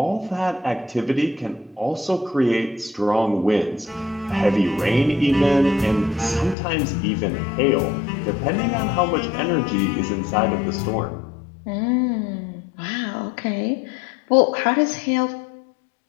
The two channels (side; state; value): right; drops out; at 6.6 s